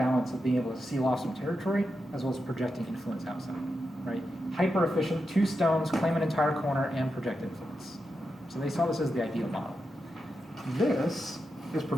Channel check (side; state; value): both; normal; correlation 0.87